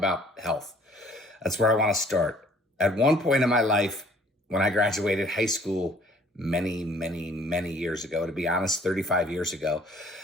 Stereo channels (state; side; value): normal; both; correlation 0.56